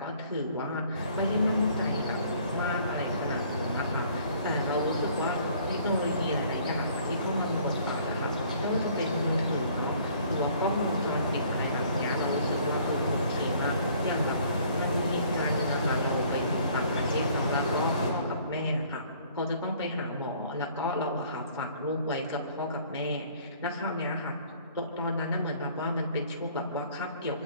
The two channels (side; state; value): both; inverted; correlation -0.57